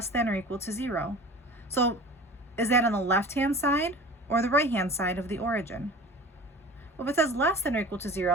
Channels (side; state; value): both; normal; correlation 0.39